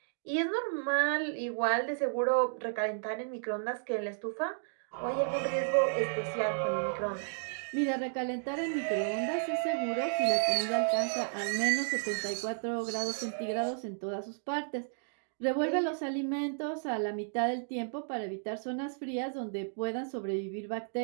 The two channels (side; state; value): left; silent; digital silence